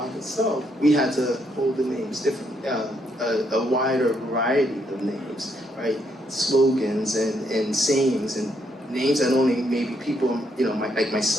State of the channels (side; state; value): both; normal; correlation 0.74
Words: itself, we had to hold the names differently, a wider variety of names, right? Slogans and sayings and names that only maybe people, like